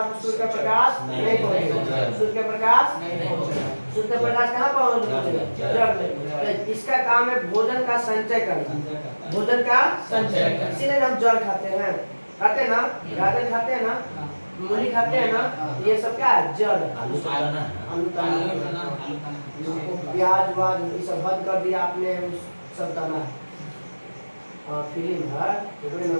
सूर्य का प्रकाश नहीं पहुँचेगा, सूर्य का प्रकाश नहीं पहुँचेगा, सूर्य का प्रकाश कहाँ पहुँचेगा? जड़ में। तो इसका काम है भोजन का संचय करना, भोजन का संचय। इसीलिए हम जल खाते हैं, खाते हैं ना, गाजर खाते हैं ना, मूली खाते हैं ना, ये सब क्या है? जड़। आलू खाना, प्याज वाज ये सब बंद कर दिया आपने, सब करना है। फिल्म है तो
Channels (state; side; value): inverted; both; correlation -1.00